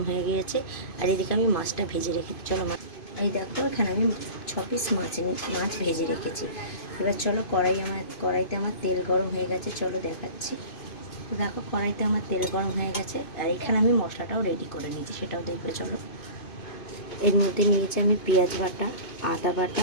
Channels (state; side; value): late; right; 2.5 ms